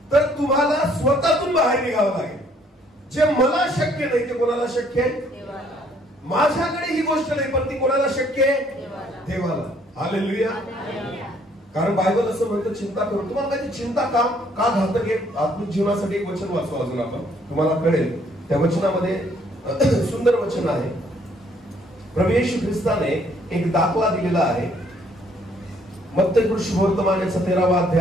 तर तुम्हाला स्वतःतून बाहेर निघावं लागेल. जे मला शक्य नाही ते कोणाला शक्य आहे? माझ्याकडे ही गोष्ट नाही, पण ती कोणाला शक्य आहे? देवाला. हालेलुया. कारण बायबल असं म्हणतं चिंता करू. तुम्हाला माहिती चिंता का घातक आहे? आत्मिक जीवनासाठी एक वचन वाचू अजून आपण, तुम्हाला कळेल. त्या वचनामध्ये सुंदर वचन आहे. प्रभू येशू ख्रिस्ताने एक दाखला दिलेला आहे. मत्ती शुभवर्तमान याचा 13वा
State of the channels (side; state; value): both; normal; correlation 0.64